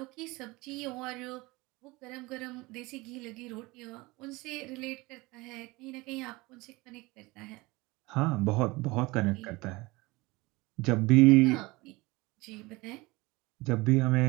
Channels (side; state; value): left; quieter; 22.7 dB